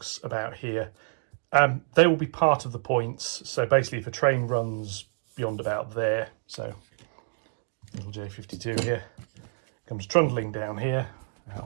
about here. They will be part of the points. So basically if a train runs beyond about there, so little J52 here, comes trundling down here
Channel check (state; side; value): silent; left; digital silence